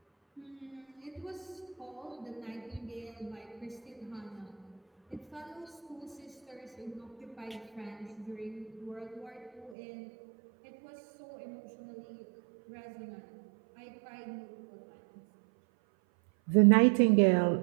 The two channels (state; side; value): drops out; left; at 9.8 s